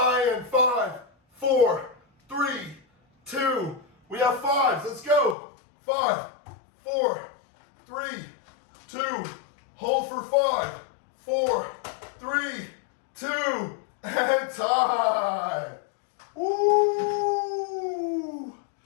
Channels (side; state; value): right; drops out; at 5.4 s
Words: 5, 4, 3, 2. We have 5. Let's go. 5, 4, 3, 2. Hold for 5, 4, 3, 2, and time. Woo!